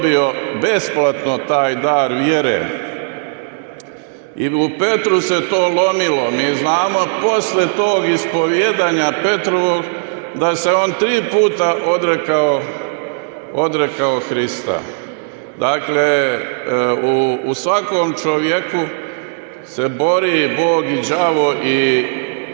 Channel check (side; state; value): left; silent; digital silence